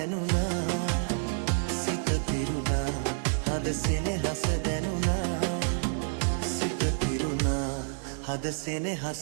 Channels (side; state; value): left; silent; 57 dB below the other